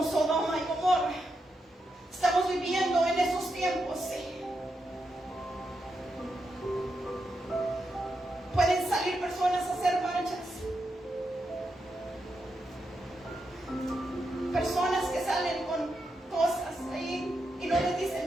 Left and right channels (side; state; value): both; normal; correlation 0.85